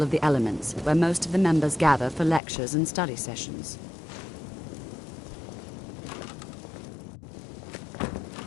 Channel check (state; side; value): drops out; right; at 2.4 s